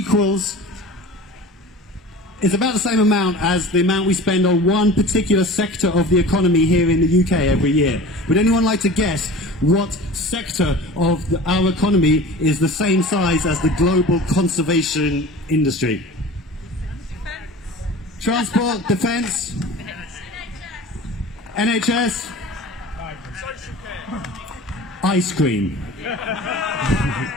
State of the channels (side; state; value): both; normal; correlation 0.38